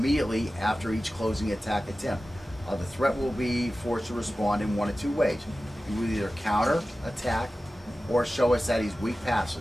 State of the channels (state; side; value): normal; both; correlation 0.95